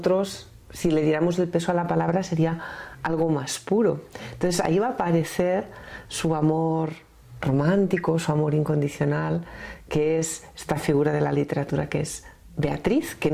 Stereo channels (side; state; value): both; identical; correlation 1.00